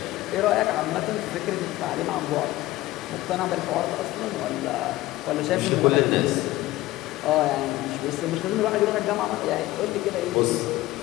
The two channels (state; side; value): quieter; right; 17.3 dB